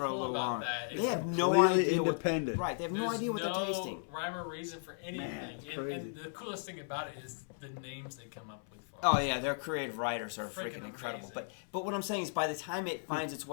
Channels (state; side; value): silent; right; 54 dB below the other